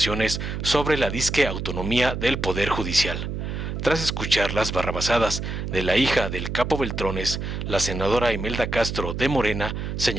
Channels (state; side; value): noise; right; hum, 4 dB below the sound